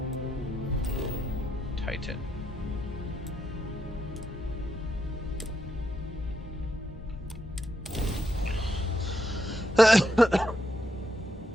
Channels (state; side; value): normal; both; correlation 0.81